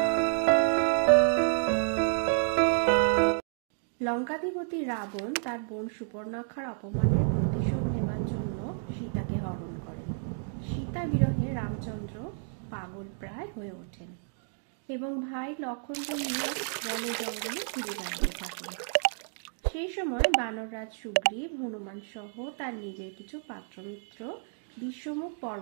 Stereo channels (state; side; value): silent; left; digital silence